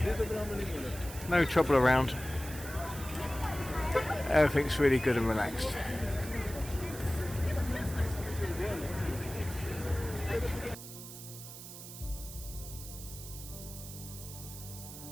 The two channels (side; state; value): right; noise; hiss, 12 dB below the sound